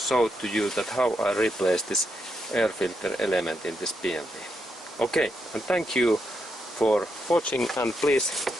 to you that how I replace this air filter element in this BMW. Okay, and thank you for watching, and please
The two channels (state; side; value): normal; both; correlation 0.82